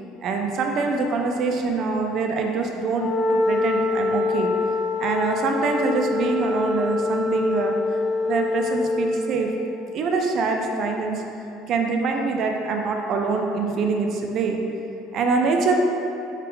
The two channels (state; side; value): normal; both; correlation 0.62